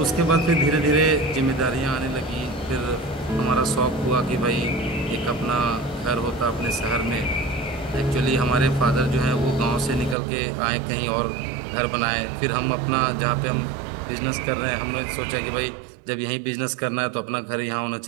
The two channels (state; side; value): drops out; left; at 10.2 s